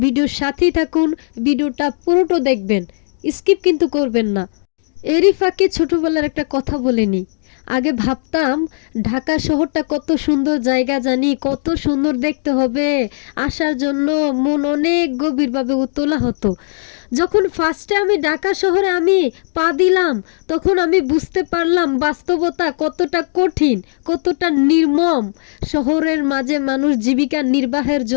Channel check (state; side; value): silent; right; digital silence